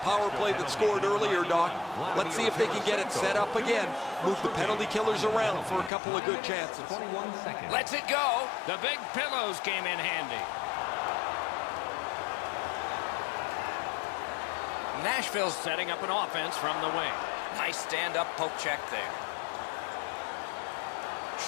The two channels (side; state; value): right; drops out; at 5.9 s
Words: play that scored earlier, Doc. Let's see if they can get it set up again. Move the penalty killers around for a couple of good chances. Let's it go. The big pillows came in handy. Nashville's setting up an offense from the wing. Nice stand-up poke check there.